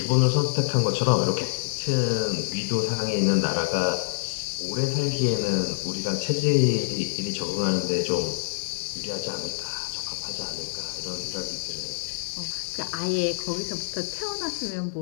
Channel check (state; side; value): silent; right; digital silence